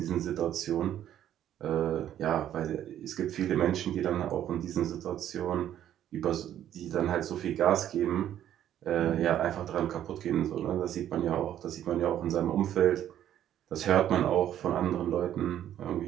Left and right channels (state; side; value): quieter; left; 11.1 dB